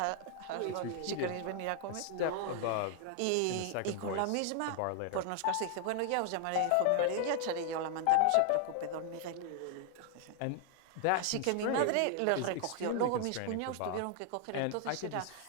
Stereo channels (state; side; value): different; both; correlation 0.00